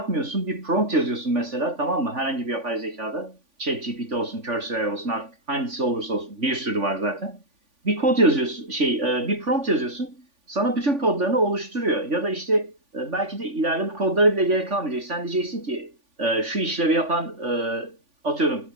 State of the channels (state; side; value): late; left; 3.5 ms